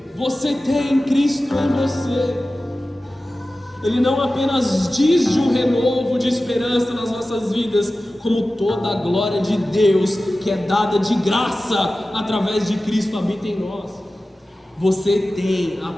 Você tem Cristo em você. Ele não apenas diz de um renovo de esperança nas nossas vidas, como toda a glória de Deus que é dada de graça através de Cristo habita em nós. Você tem a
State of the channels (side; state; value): both; normal; correlation 0.95